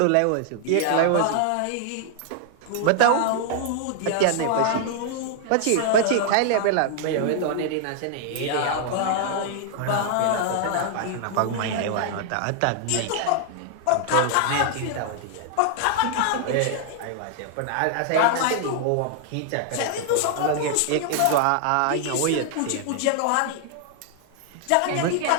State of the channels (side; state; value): both; different; correlation -0.01